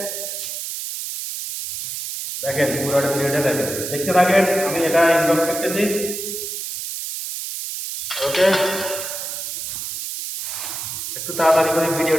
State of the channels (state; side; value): noise; right; hiss, 6 dB below the sound